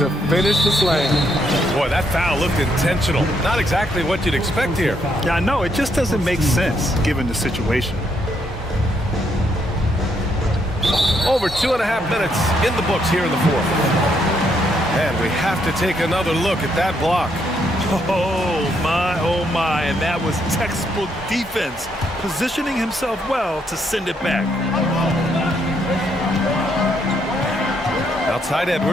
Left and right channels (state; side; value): normal; both; correlation 0.74